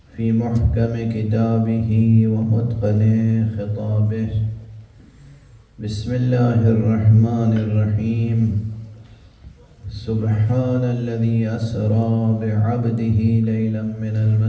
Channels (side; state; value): both; identical; correlation 1.00